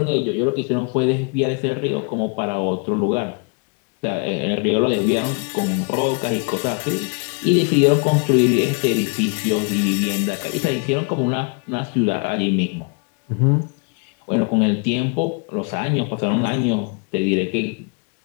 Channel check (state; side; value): quieter; right; 34.9 dB